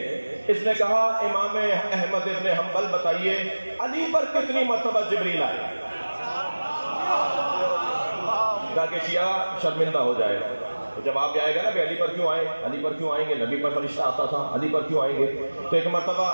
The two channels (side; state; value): both; inverted; correlation -1.00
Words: اس نے کہا امام احمد ابن حنبل بتائیے علی پر کتنی مرتبہ جبریل آئے؟ تاکہ شیعہ شرمندہ ہو جائے۔ تو جواب آئے گا نا کہ علی پر کیوں آئے، علی پر کیوں آئیں گے، نبی پر فرشتہ آتا تھا، علی پر کیوں آئیں گے؟ تو ایک مرتبہ